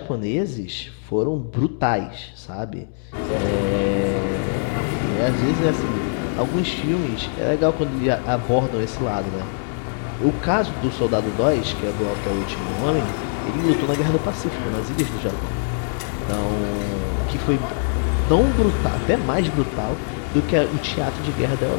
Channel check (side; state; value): right; silent; digital silence